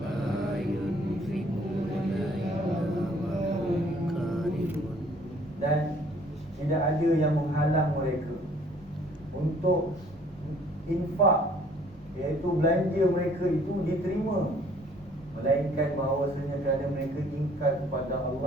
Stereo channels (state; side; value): normal; both; correlation 0.58